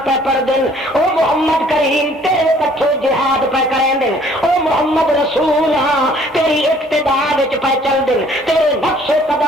پہ پڑھ دن او محمد کریم تیرے پچھو جہاد پہ کریں دن او محمد رسول ہاں تیری اقتداء وچ پہ چل دن تیرے نقش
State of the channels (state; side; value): normal; both; correlation 0.58